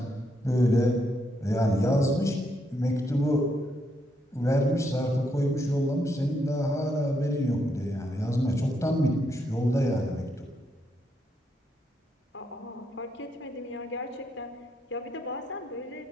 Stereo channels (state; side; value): normal; both; correlation 0.78